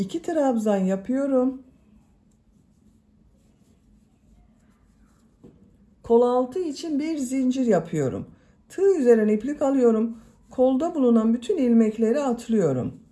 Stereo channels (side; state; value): both; identical; correlation 1.00